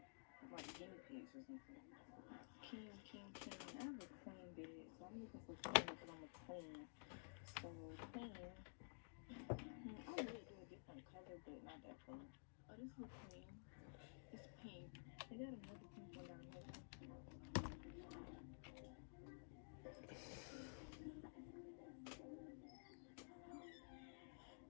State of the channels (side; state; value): right; silent; digital silence